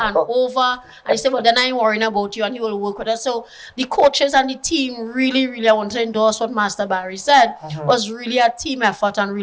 and over. And he said, well, then I ain't worrying about you. And he will work with us. So the coaches and the team really, really, I want to endorse what Master Barry said, was really a team effort and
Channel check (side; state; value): both; identical; correlation 1.00